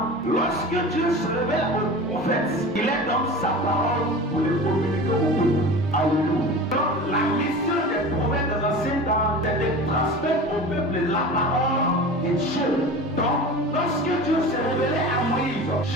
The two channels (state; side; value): normal; both; correlation 0.34